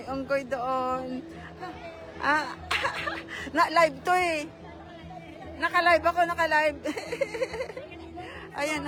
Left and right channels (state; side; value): identical; both; correlation 1.00